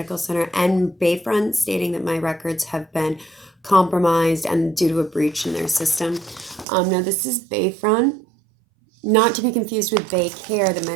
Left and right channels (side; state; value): left; drops out; at 6.7 s